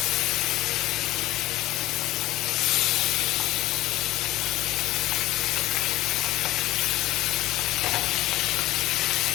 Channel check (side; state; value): right; quieter; 16.5 dB